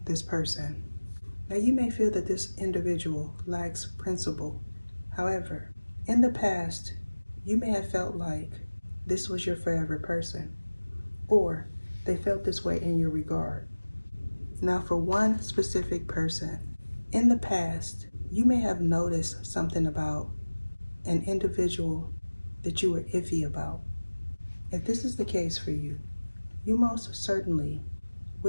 this person. Now, you may feel that this individual lacks principle. However, in the past, you may have felt like this was your forever person, or they felt this way in your regard. Now, for one specific person, in the past, you may have noticed something about an individual that you were iffy about. If this is the case for you, you most certainly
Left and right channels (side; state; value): both; inverted; correlation -1.00